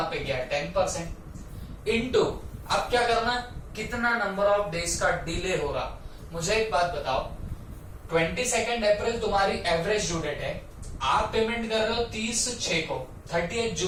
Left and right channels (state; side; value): identical; both; correlation 1.00